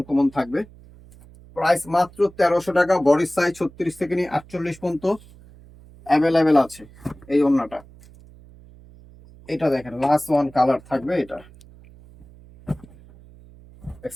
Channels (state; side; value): noise; right; hum, 23 dB below the sound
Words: থাকবে। প্রাইস মাত্র 1300 টাকা। বডি সাইজ 36 থেকে নিয়ে 48 পর্যন্ত অ্যাভেলেবেল আছে। এই ওড়নাটা, এটা দেখেন লাস্ট ওয়ান কালার থাকবে। এটা